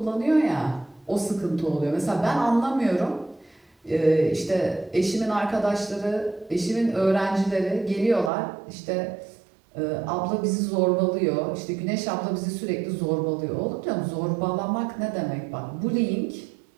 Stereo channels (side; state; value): left; drops out; at 8.3 s